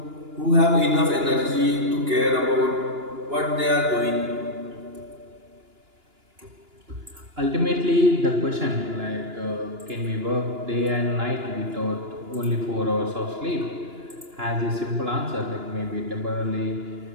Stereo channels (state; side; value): late; left; 2.9 ms